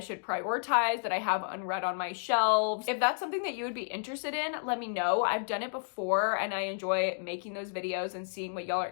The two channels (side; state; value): right; silent; digital silence